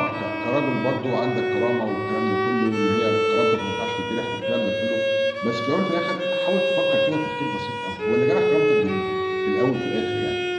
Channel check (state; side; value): identical; both; correlation 1.00